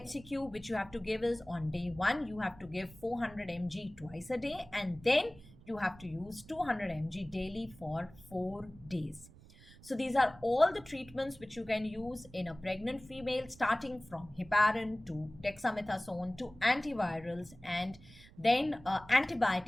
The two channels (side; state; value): right; noise; rumble, 22 dB below the sound